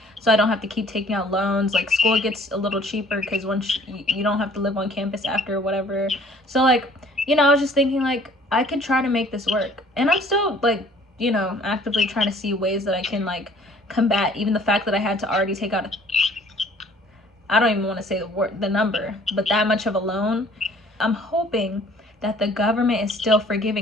so I don't have to keep taking out loans. Like school gets a little cheaper because once you don't have to live on campus after whatever. So like, you know, I was just thinking like I could try to make this work, and I'm still like, you know, actively trying to see ways that I can like combat even the fact that I had to already take out I don't even want to say the number, but that much of a loan. I'm hoping that the government is still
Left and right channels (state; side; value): normal; both; correlation 0.55